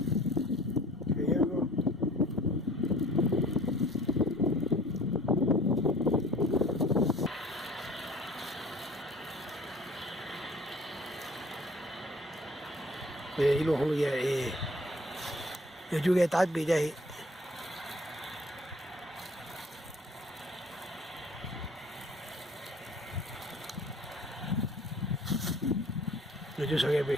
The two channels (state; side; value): normal; both; correlation 0.51